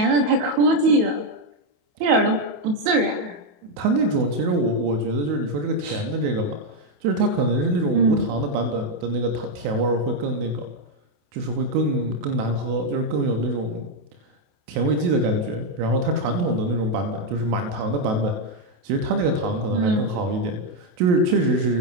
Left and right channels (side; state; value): left; late; 28 ms